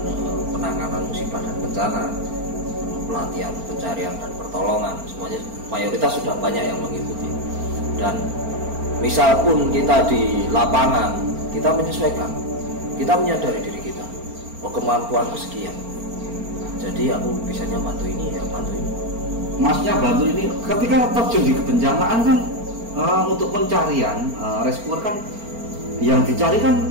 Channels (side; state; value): left; late; 4.4 ms